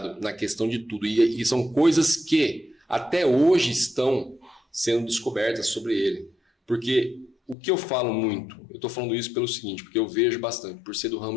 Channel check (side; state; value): right; drops out; at 7.6 s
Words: na questão de tudo. E são coisas que até hoje estão sendo descobertas sobre ele. Porque o que eu falo muito, eu estou falando isso pelo seguinte, porque eu vejo bastante, por ser do